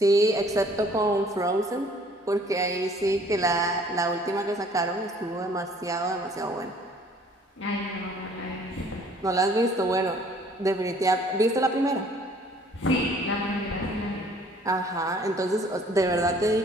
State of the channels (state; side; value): normal; both; correlation 0.56